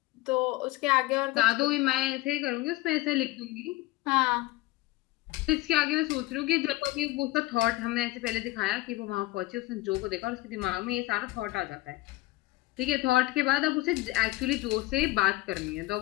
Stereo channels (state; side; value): quieter; right; 18.8 dB